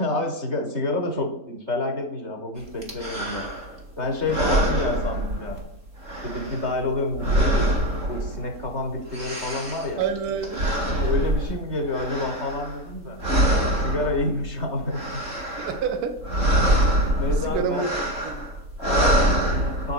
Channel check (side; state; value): left; late; 3.7 ms